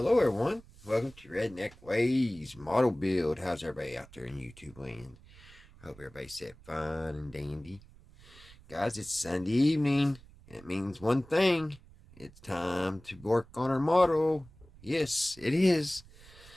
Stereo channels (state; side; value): noise; right; rumble, 23 dB below the sound